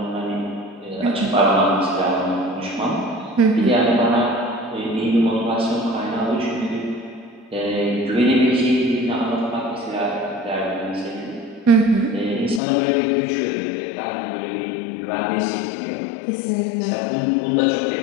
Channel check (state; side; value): drops out; right; at 12.6 s